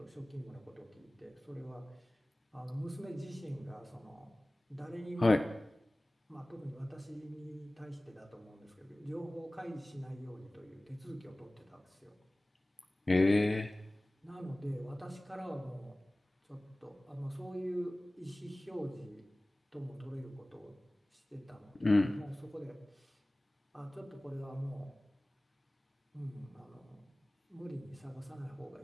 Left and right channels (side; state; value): both; normal; correlation 0.98